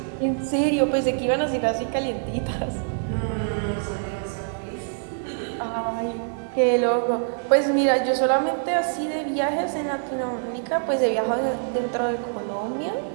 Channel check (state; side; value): silent; left; 62 dB below the other